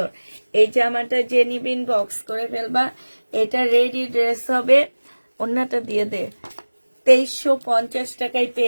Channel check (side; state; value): both; inverted; correlation -1.00